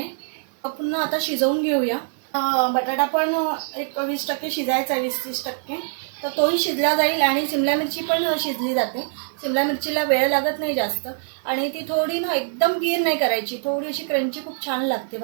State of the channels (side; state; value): left; silent; 63 dB below the other